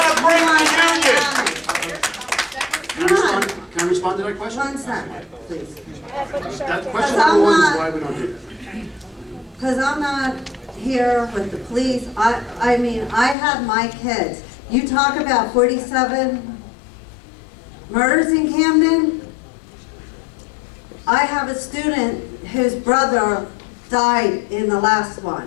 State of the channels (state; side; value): drops out; right; at 13.4 s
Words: to bring the union. Can I respond to that question? 1 second, please. That question number 1 is why we don't do that. Because I'm not here with the police. I mean, I have my kids. You talk about 47 murders in Camden. I have a student whose brother died in the last